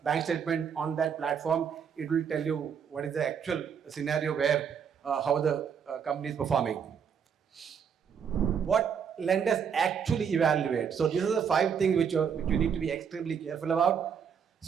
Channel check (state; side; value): quieter; left; 7.3 dB